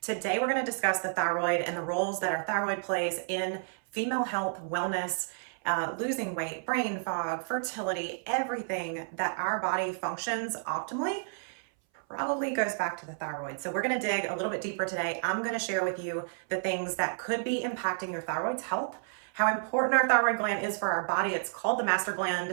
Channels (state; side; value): silent; left; 57 dB below the other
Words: Today, we're going to discuss the thyroid and the roles that our thyroid plays in female health, wellness, losing weight, brain fog, fertility, everything that our body functions optimally probably goes back to the thyroid. So we're going to dig a little bit deeper today. I'm going to share with you the things that could be impacting your thyroid's health, how important our thyroid gland is for our body. It's called the master